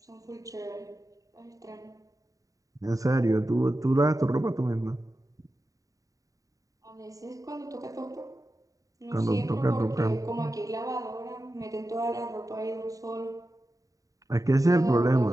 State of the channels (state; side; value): late; left; 0.16 ms